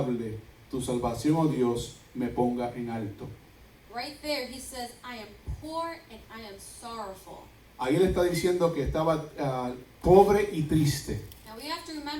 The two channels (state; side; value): identical; both; correlation 1.00